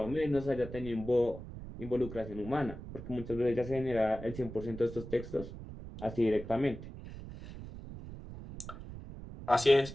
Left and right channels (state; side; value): noise; right; rumble, 12 dB below the sound